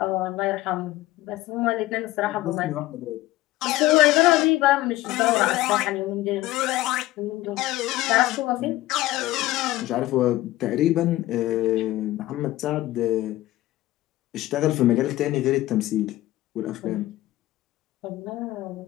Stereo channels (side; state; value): right; quieter; 16.5 dB